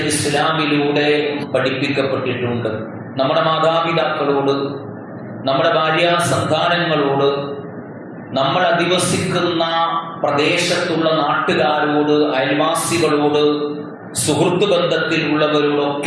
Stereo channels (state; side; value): identical; both; correlation 1.00